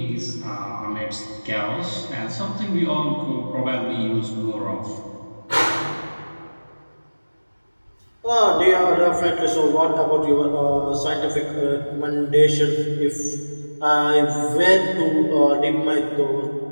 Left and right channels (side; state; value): both; inverted; correlation -1.00